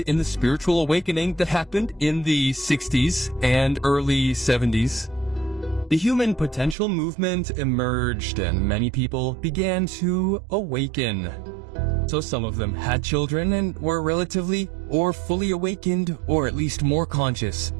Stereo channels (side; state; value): left; drops out; at 6.8 s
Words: in the spiritual awakening that happened in the 60s and early 70s. The human potential movement emerged and many people began to awaken. So some of them had children and were relatively or fully awakened, or at least more conscious